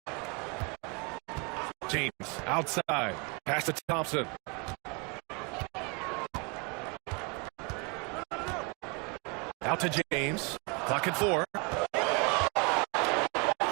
James outside. Pass to Thompson. Out to James. Clock at 4.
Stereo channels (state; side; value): quieter; left; 32.1 dB